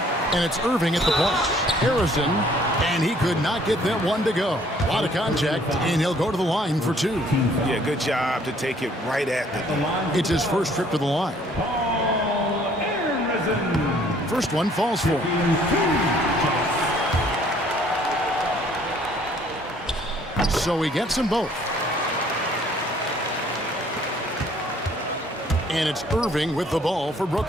And it's Irving at the point. Harrison. And he could not get that one to go. A lot of contact, and he'll go to the line for two. Yeah, good job to take it right at the line. It's his first trip to the line. First one falls for him. So he gets them both. And it's Irving with the ball for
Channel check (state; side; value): normal; both; correlation 0.60